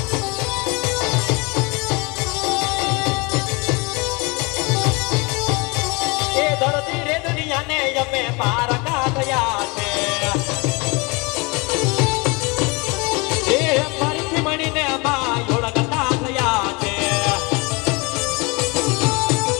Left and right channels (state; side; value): quieter; right; 27.8 dB